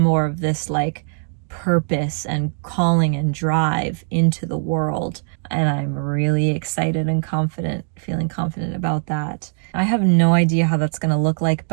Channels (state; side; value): silent; left; 65 dB below the other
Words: more of this like purpose and calling and drive into the world. And I'm really excited and feeling confident about that. I have no idea how that's going to look like,